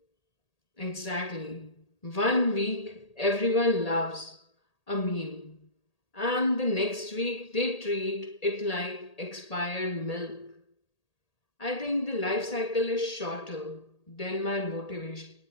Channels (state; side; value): late; right; 1.8 ms